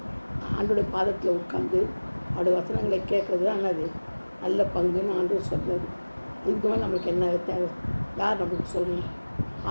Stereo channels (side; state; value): both; inverted; correlation -1.00